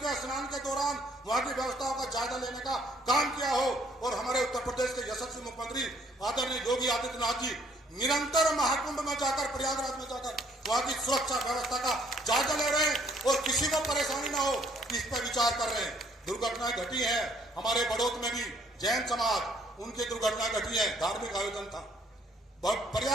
स्नान के दौरान वहां की व्यवस्थाओं का जायजा लेने का काम किया हो। और हमारे उत्तर प्रदेश के यशस्वी मुख्यमंत्री आदरणीय योगी आदित्यनाथ जी निरंतर महाकुंभ में जाकर, प्रयागराज में जाकर वहां की सुरक्षा व्यवस्था का जायजा ले रहे हैं और किसी को परेशानी ना हो इस पर विचार कर रहे हैं। दुर्घटनाएं घटी है हमारे बड़ौत में भी, जैन समाज उनकी दुर्घटना घटी है, धार्मिक आयोजन था,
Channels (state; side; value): normal; both; correlation 0.64